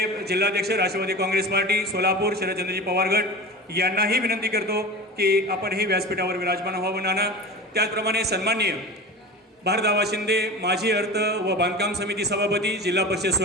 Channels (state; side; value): normal; both; correlation 0.32